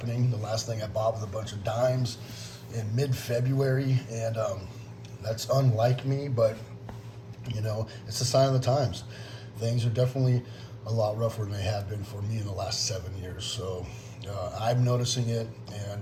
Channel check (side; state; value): both; identical; correlation 1.00